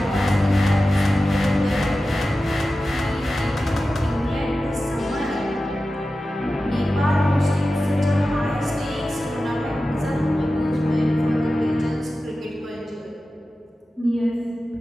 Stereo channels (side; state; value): both; normal; correlation 0.94